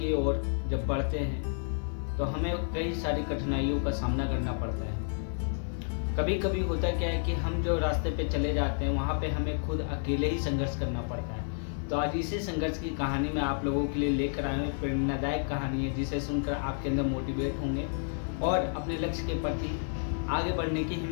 ओर जब बढ़ते हैं तो हमें कई सारी कठिनाइयों का सामना करना पड़ता है। कभी कभी होता क्या है कि हम जो रास्ते पे चले जाते हैं वहाँ पे हमें खुद अकेले ही संघर्ष करना पड़ता है। तो आज इसी संघर्ष की कहानी मैं आप लोगों के लिए लेकर आया हूँ। प्रेरणादायक कहानी है जिसे सुनकर आपके अंदर मोटिवेट होंगे और अपने लक्ष्य के प्रति आगे बढ़ने की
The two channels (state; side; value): silent; right; 57 dB below the other